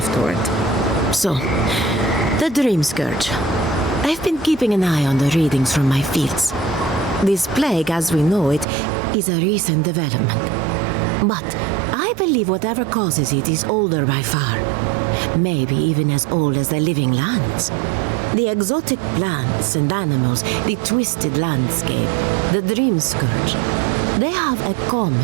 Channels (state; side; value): drops out; left; at 8.7 s